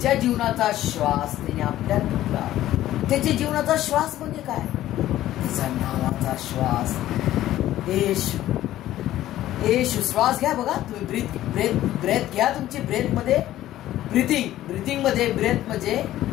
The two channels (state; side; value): quieter; right; 13.9 dB